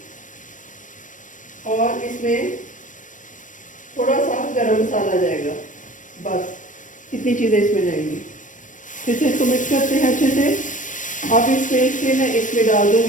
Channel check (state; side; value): late; right; 0.37 ms